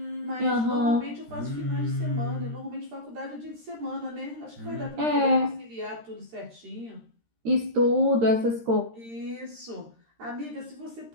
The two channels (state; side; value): late; left; 13 ms